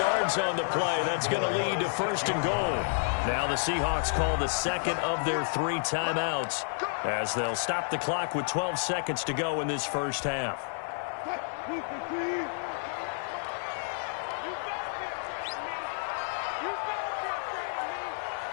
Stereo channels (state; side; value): silent; right; 58 dB below the other